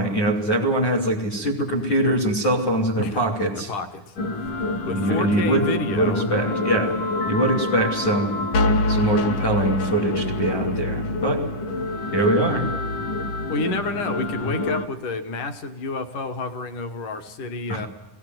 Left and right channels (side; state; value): right; late; 10 ms